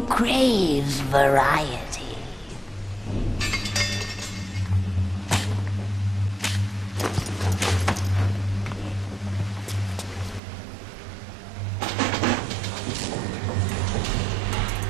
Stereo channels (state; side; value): drops out; left; at 10.4 s